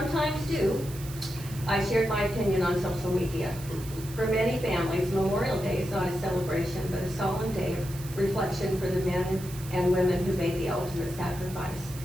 do, I shared my opinion on social media. For many families, Memorial Day is not a celebration, but a solemn day of reflection for the men and women who made the ultimate sacrifice.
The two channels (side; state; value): right; noise; hiss, 15 dB below the sound